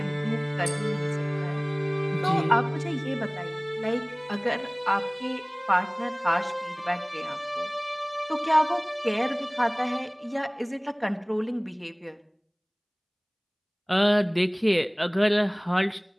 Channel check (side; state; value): both; identical; correlation 1.00